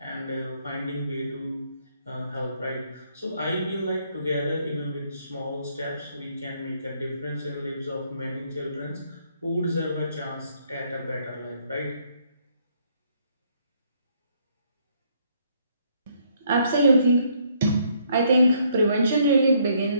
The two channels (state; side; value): inverted; both; correlation -0.69